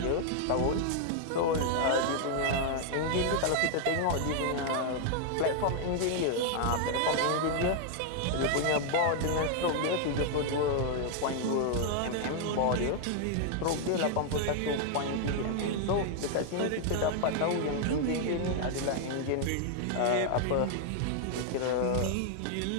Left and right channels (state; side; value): different; both; correlation 0.00